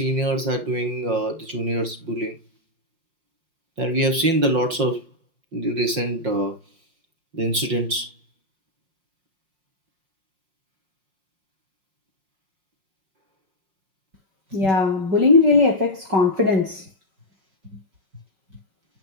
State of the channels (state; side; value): late; left; 5.6 ms